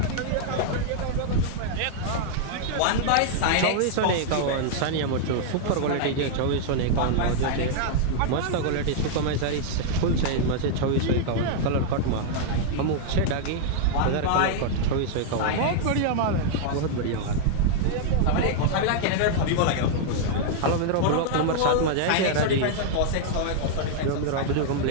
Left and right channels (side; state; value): both; different; correlation -0.01